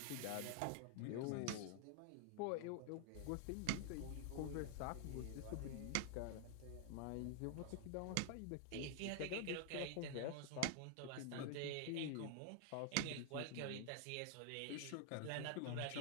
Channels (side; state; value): both; different; correlation 0.00